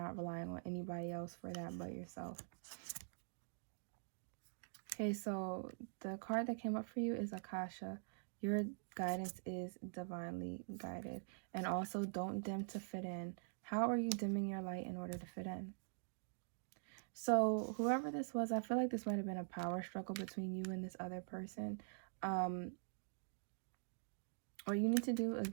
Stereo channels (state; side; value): silent; left; digital silence